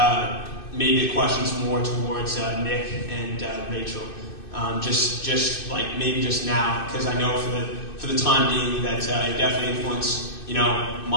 maybe the question's more towards Nick and Rachel. Just like maybe just now, because I know for the time being that it definitely influenced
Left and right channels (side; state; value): right; late; 2.6 ms